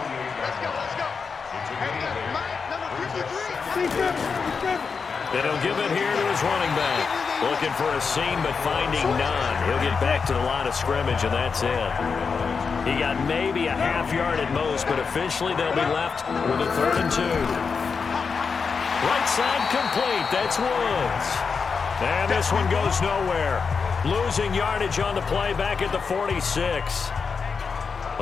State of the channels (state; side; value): quieter; right; 5.4 dB